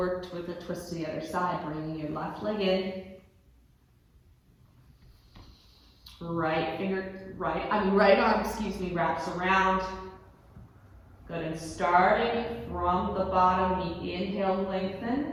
with a twist to the other side, bringing your left leg in. Right arm, wraps around. Good, and starting from the bottom, we inhale, lengthen.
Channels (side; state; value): both; identical; correlation 1.00